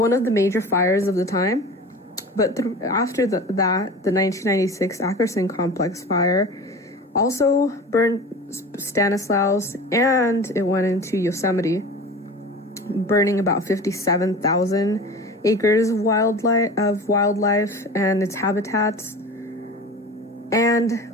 of the major fires of the time. But after that, the 1996 Ackerson complex fire also burned Stanislaus, and it went into Yosemite, burning about 57,000 acres of wildlife and its habitats.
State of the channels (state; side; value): normal; both; correlation 0.36